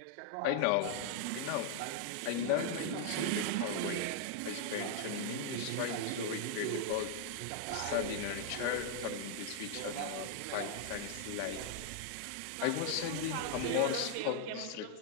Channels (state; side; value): different; both; correlation 0.00